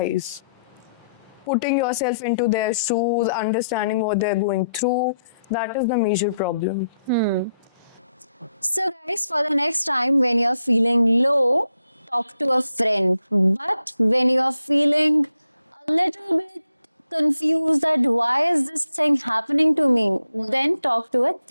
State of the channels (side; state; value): both; inverted; correlation -0.79